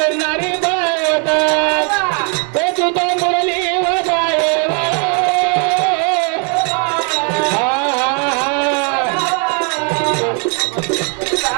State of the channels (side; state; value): left; quieter; 38.9 dB